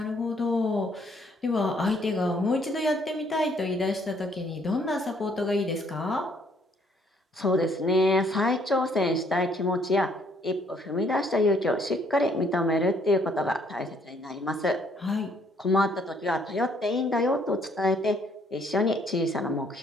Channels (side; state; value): both; normal; correlation 0.66